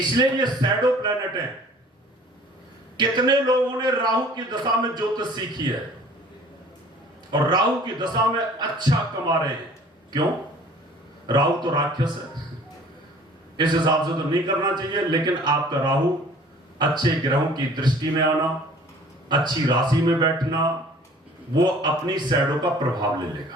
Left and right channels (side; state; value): both; normal; correlation 0.50